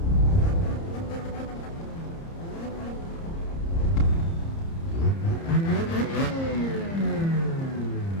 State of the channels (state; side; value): late; right; 30 ms